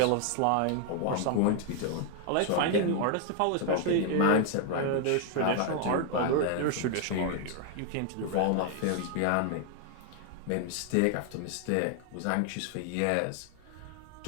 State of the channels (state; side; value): different; both; correlation 0.00